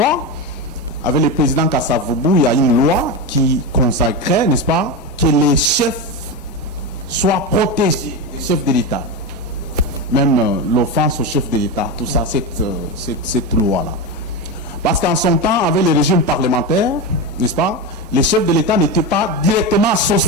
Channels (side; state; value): both; normal; correlation 0.16